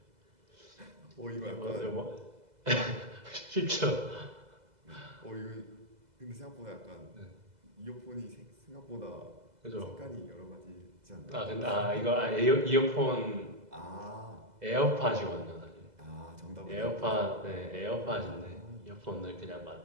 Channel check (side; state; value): left; late; 2.0 ms